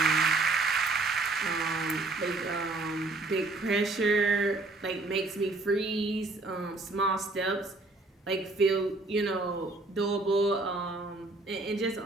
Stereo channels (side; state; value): left; quieter; 3.2 dB